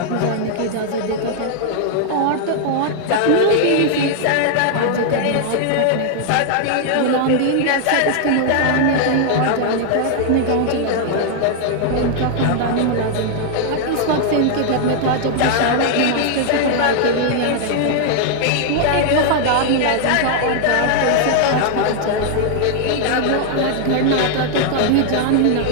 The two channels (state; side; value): different; both; correlation 0.00